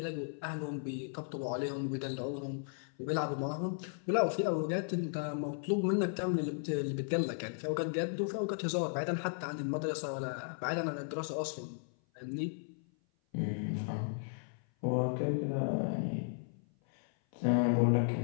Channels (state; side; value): silent; right; 54 dB below the other